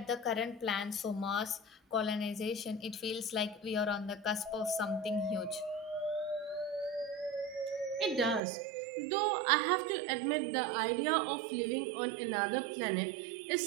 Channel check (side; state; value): left; drops out; at 8.4 s